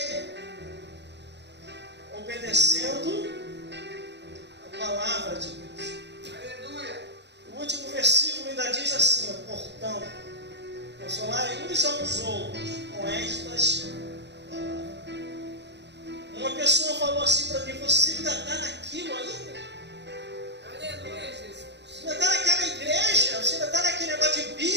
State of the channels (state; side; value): late; left; 0.50 ms